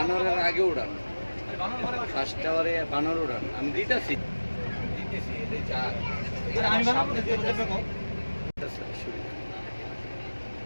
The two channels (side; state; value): both; inverted; correlation -1.00